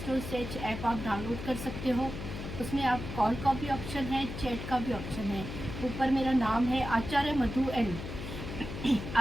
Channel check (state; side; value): noise; left; hum, 8 dB below the sound